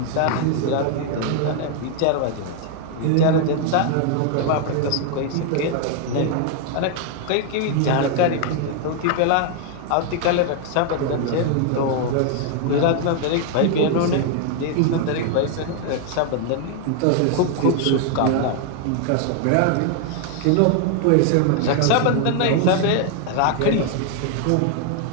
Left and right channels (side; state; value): both; different; correlation 0.00